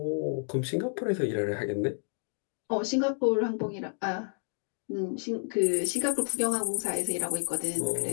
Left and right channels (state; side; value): silent; right; 55 dB below the other